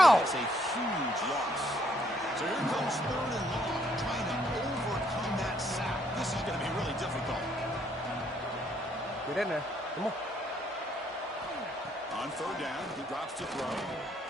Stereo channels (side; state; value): both; normal; correlation 0.69